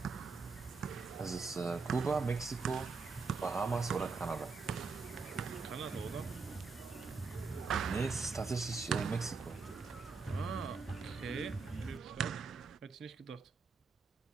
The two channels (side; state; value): left; quieter; 4.6 dB